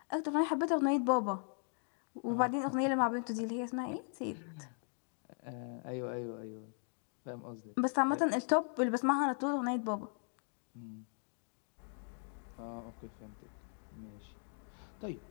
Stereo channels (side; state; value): right; silent; 52 dB below the other